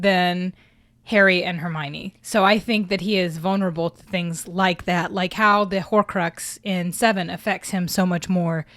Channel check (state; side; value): identical; both; correlation 1.00